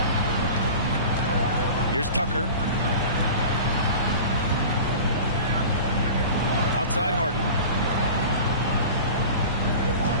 Here's Tucker. Outside Harden.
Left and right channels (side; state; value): both; inverted; correlation -0.36